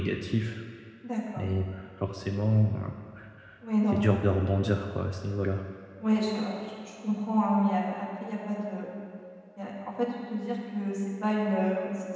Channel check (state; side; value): identical; both; correlation 1.00